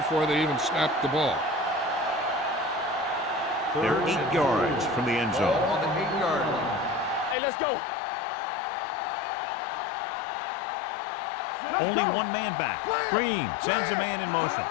they even snapped the ball. They're 8 yards from the end Ball zone. on the 8-yard line. Hey, let's go. We turning it up. Only one man back. Green sends a man in motion.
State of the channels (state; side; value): drops out; right; at 7.4 s